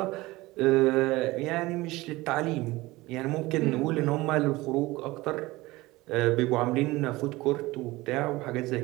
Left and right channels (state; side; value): quieter; left; 20.0 dB